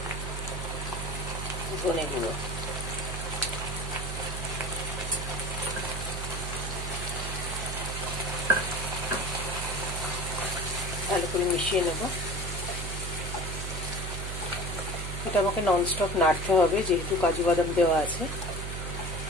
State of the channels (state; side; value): noise; right; hum, 5 dB below the sound